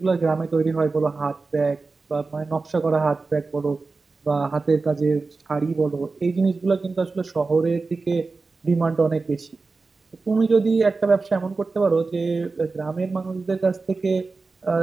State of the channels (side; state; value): left; quieter; 3.9 dB